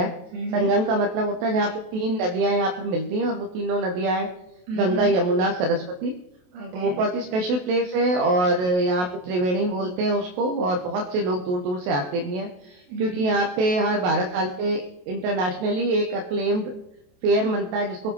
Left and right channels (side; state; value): left; late; 28 ms